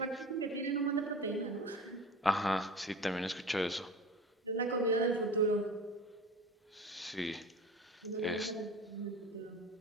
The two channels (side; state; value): both; normal; correlation 0.36